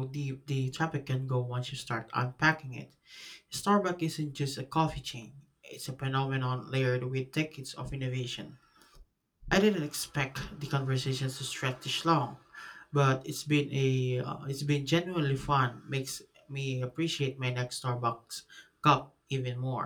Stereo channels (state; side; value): identical; both; correlation 1.00